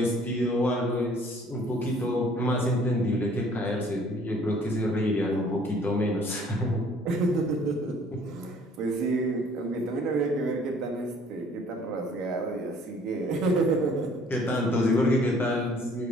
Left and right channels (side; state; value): both; normal; correlation 0.57